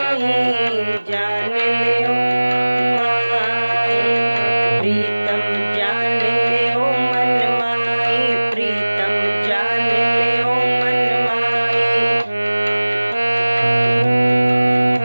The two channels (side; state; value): both; inverted; correlation -1.00